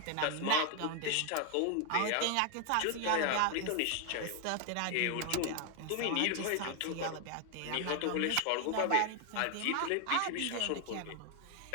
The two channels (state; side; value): different; both; correlation 0.01